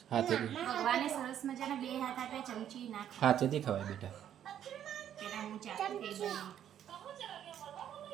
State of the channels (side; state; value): left; quieter; 10.2 dB